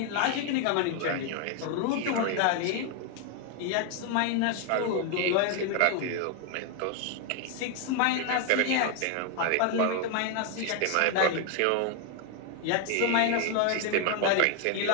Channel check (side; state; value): both; different; correlation 0.01